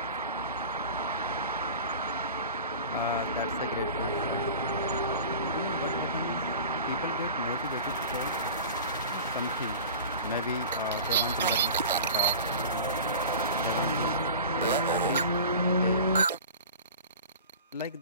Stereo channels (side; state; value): both; inverted; correlation -0.37